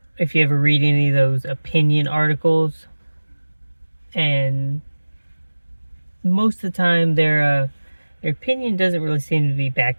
if you ever read any of those opinion articles, and most of the time their opinion doesn't really seem to be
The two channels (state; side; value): inverted; both; correlation -1.00